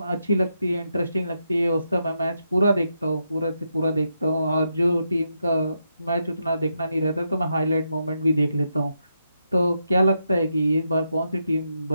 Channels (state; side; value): inverted; both; correlation -0.82